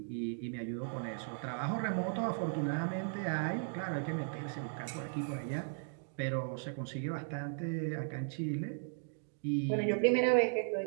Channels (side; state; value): left; silent; digital silence